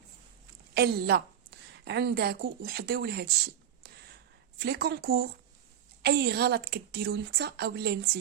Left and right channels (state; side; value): quieter; left; 9.7 dB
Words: الا عندكم وحديو لهذا الشيء في لي كونكور اي غلط كديروا انت اولا